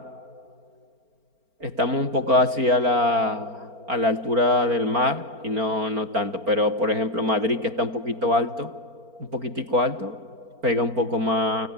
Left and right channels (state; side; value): late; left; 4.4 ms